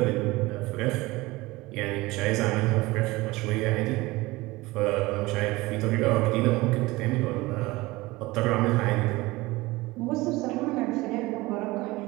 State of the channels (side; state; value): left; quieter; 20.8 dB